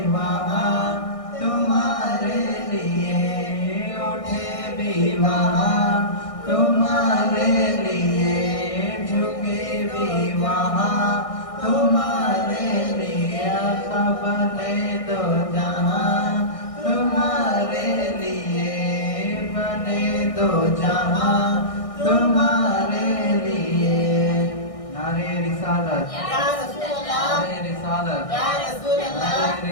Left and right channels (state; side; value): late; right; 1.6 ms